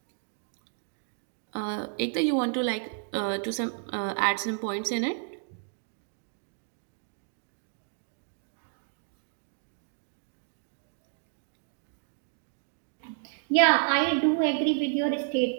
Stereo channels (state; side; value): silent; left; digital silence